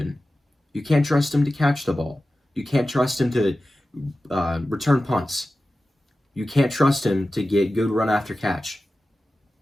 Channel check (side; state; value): both; normal; correlation 0.94